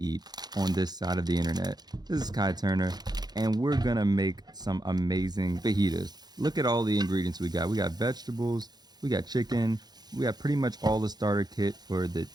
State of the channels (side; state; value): left; late; 0.20 ms